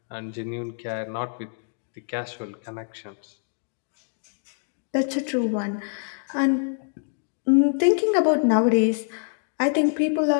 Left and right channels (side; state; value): right; silent; digital silence